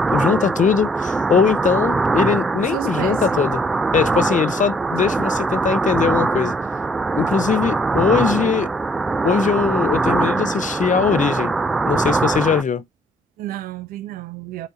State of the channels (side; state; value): both; normal; correlation 0.64